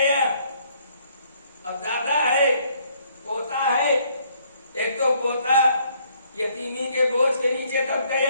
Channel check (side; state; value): both; inverted; correlation -0.66